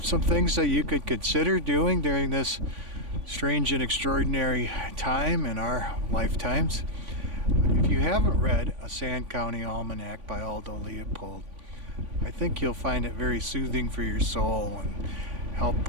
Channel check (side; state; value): left; late; 3.5 ms